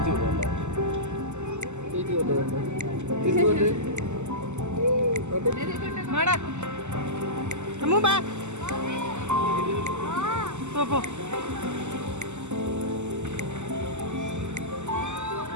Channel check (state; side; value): late; left; 0.83 ms